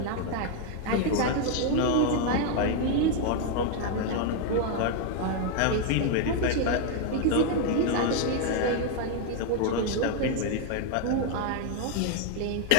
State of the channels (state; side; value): different; both; correlation 0.01